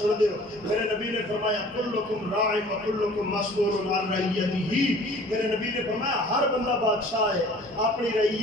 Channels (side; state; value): both; normal; correlation 0.49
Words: دے ہو۔ میرے نبی نے فرمایا کلکم راع و کلکم مسئول عن رعیتہ، میرے نبی نے فرمایا ہر بندہ بادشاہ ہے اپنی